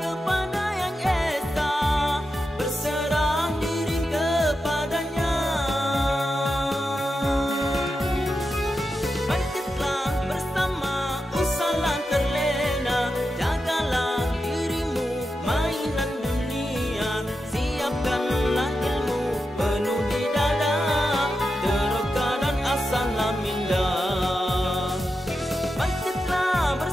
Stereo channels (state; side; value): normal; both; correlation 0.89